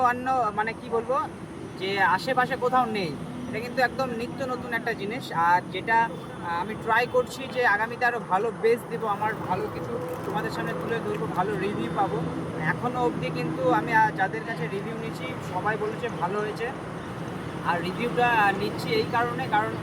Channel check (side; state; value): both; identical; correlation 1.00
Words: অন্য মানে কি বলবো যে আশেপাশে কোথাও নেই। এটা কিন্তু একদম নিত্য নতুন একটা জিনিস, আর যেটা আমি ট্রাই করছি যে আগামীতে আরও ভালো বেস দেবো, আমার ভালো কিছু তোমাদের সামনে তুলে ধরবো, ভালো রিভিউ পাবো। এখনও অবধি কিন্তু আমি যাদের কাছে রিভিউ নিয়েছি সবাই বলেছে ভালো হয়েছে। আর রিভিউটা নিচ্ছি এই কারণে, কারণ